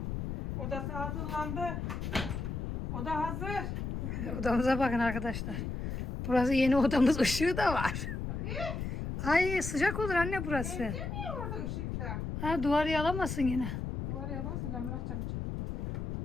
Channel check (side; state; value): left; noise; rumble, 4 dB below the sound